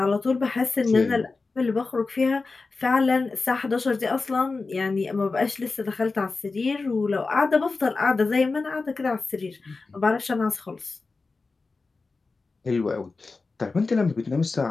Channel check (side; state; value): right; quieter; 3.9 dB